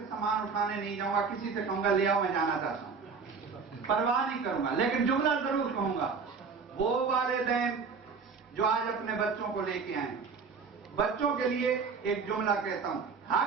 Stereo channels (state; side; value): quieter; left; 5.2 dB